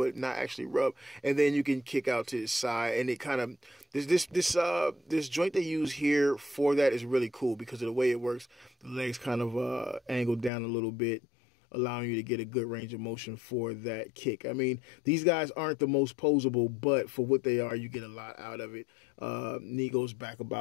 not actually rub. And then you can kick out to the side, and it kind of, this joint they use here for that is really cool because of the way it works. The legs kind of angled down a little bit, allowing you to get a good range of motion for that kick. I mean, these guys aren't the most posable, but for what they are, you get a lot out of it. Knee goes back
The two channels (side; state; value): right; drops out; at 10.5 s